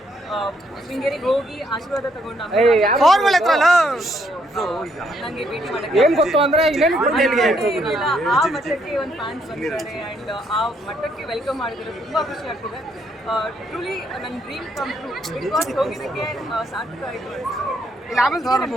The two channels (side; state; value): both; normal; correlation 0.72